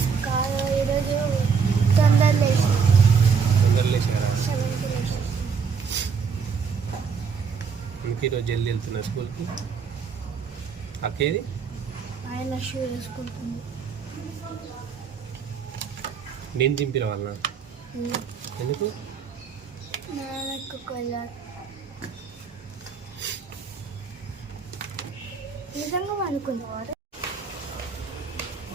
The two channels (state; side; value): quieter; left; 5.9 dB